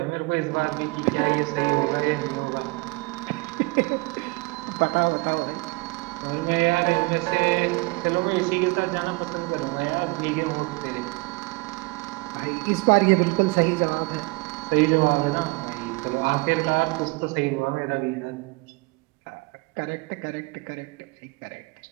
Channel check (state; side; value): quieter; left; 25.7 dB